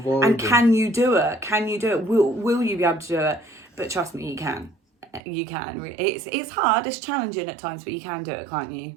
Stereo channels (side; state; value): left; drops out; at 5.2 s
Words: and can you do it? Will you be able to do it? But trust me, you can. You can. It's hard. It's challenging at times, but you can do it, can't you?